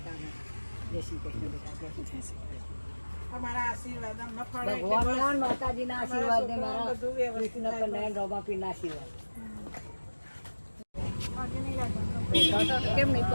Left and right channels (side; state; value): both; inverted; correlation -1.00